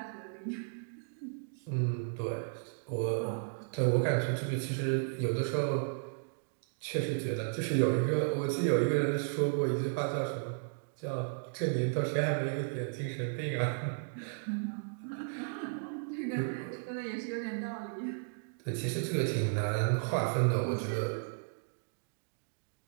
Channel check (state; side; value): silent; left; digital silence